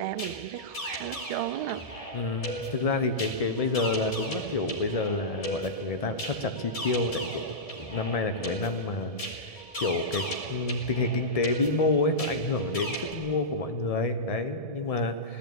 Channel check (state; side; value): late; right; 1.7 ms